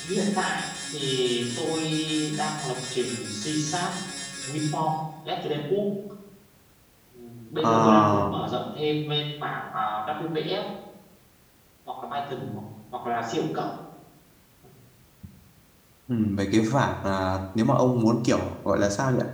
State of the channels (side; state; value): both; identical; correlation 1.00